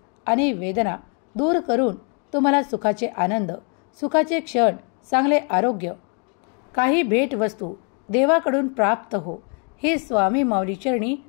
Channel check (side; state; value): right; quieter; 39.3 dB